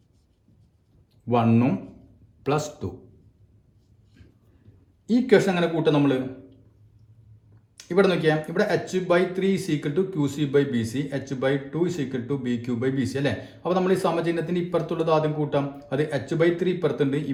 1 + 2. ഈ ഇക്വേഷൻ അങ്ങനെ കൂട്ടാം നമ്മൾ. ഇവിടെ നോക്കിയാൽ ഇവിടെ H by 3 is equal to Q C by B C, H by 2 is equal to B Q by B C അല്ലേ? അപ്പോൾ നമ്മൾ ഈ സമചിഹ്നത്തിന് ഇപ്പുറത്തുള്ളത് ആദ്യം കൂട്ടാം. അത് എച്ച് ബൈ 3 ഇപ്പുറത്തുണ്ട്,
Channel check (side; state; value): both; identical; correlation 1.00